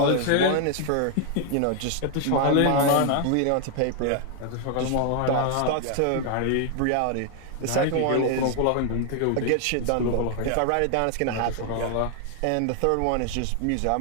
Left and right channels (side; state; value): both; different; correlation 0.00